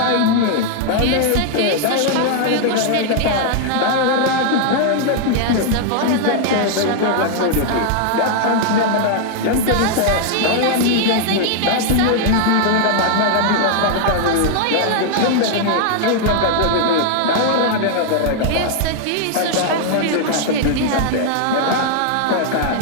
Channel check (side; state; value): both; different; correlation 0.00